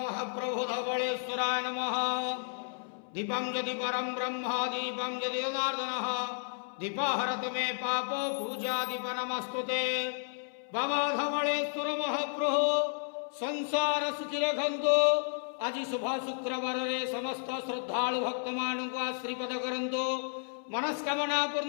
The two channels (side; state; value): right; silent; 56 dB below the other